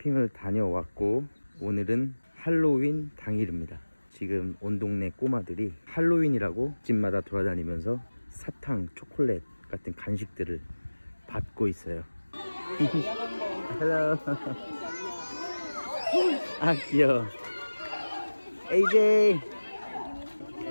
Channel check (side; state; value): both; inverted; correlation -1.00